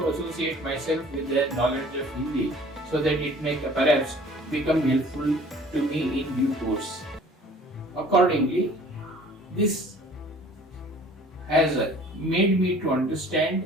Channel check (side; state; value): both; normal; correlation 0.50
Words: associate myself with the knowledge of Hindi so that it may perhaps become helpful to me in due course. Accordingly, this has made me to